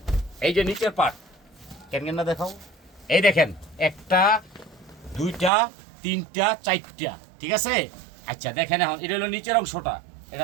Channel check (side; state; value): left; drops out; at 5.5 s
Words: এই যে নিচের পার্ট, কেন না দেখাও। এই দেখেন 1টা 2টা 3টা 4টা, ঠিক আছে। আচ্ছা দেখেন, এখন এটা হলো নিচের অংশটা,